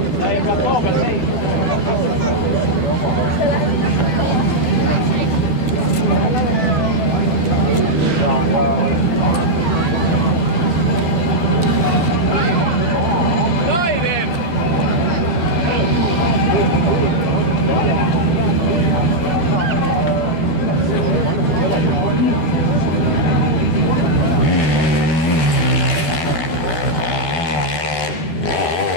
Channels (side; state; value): right; late; 12 ms